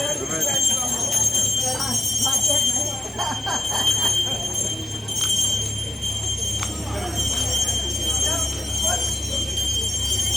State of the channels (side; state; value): both; normal; correlation 0.91